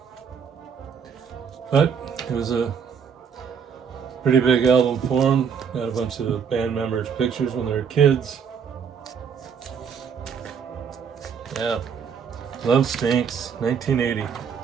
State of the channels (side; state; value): left; quieter; 6.9 dB